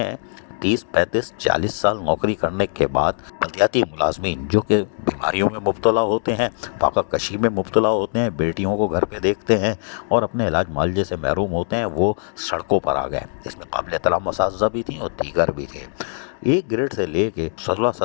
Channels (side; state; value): right; silent; digital silence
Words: 30, 35, 40 साल नौकरी करने के बाद बल्दियाती मुलाजमीन जो कि बीमारियों में मुब्तला होते हैं, फाकाकशी में मुब्तला होते हैं, बेटियों को घर पे देखते हैं और अपने इलाज मुआवजे से महरूम होते हैं, वो सड़कों पर आ गए। इसमें काबिल एहतराम असातिज़ा भी थी और दीगर भी थे। एक ग्रेड से ले के 16,